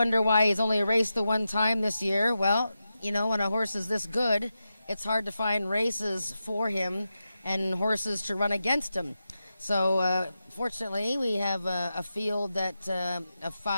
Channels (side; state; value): both; inverted; correlation -0.90